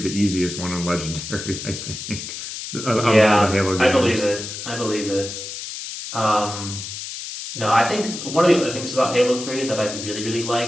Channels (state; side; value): noise; left; hiss, 8 dB below the sound